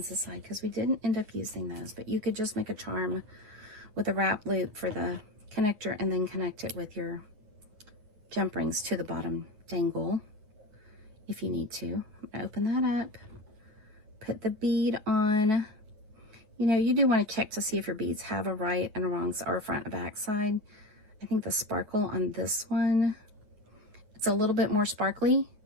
aside because we didn't end up using those. But you could just make a charm with a wrap loop for the connector and then connect it with your jump rings to the bottom dangle if you need to. I'm going to open that up, put the bead on. You know, you do want to check to see if your beads have a right and a wrong or a front and back side. I think the sparkle on this one, it's a little bit more sparkly,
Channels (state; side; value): late; left; 9.6 ms